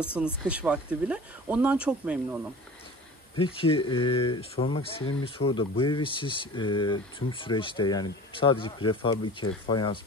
kış vakti bile. Ondan çok memnunum. Peki sormak istediğim bir soru da bu evi siz tüm süreçte yani sadece prefabrike, fayans,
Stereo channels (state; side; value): normal; both; correlation 0.40